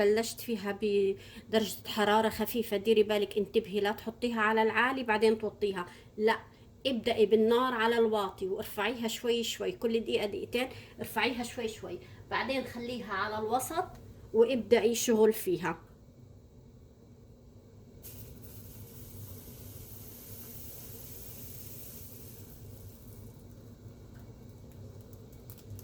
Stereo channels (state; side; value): identical; both; correlation 1.00